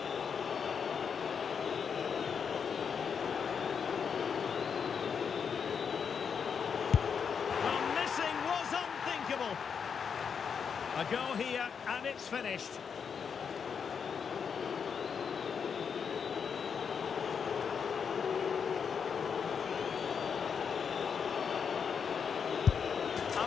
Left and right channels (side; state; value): right; quieter; 6.6 dB